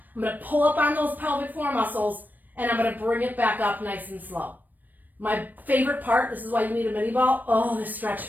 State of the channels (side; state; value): left; late; 0.088 ms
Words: I'm going to pull up on those pelvic floor muscles, and I'm going to bring it back up nice and slow. My favorite part, this is why you need a mini ball. Oh, this stretch